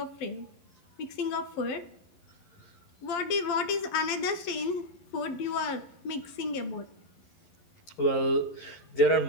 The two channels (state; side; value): late; right; 12 ms